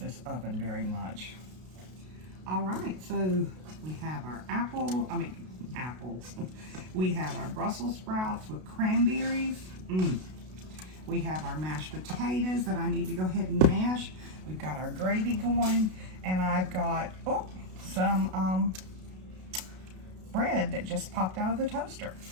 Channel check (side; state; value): left; late; 32 ms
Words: oven very much. All right, so we have our apples. We have our Brussels sprouts with cranberries. We have our mashed potatoes that I need to go ahead and mash. We've got our gravy going, and I've got some bread that just popped out of the toaster.